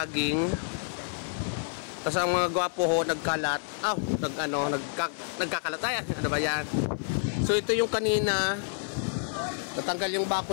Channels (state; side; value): silent; right; 59 dB below the other